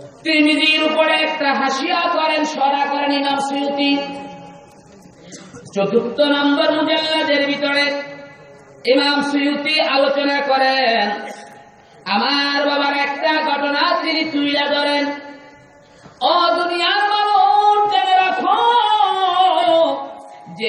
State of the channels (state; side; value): identical; both; correlation 1.00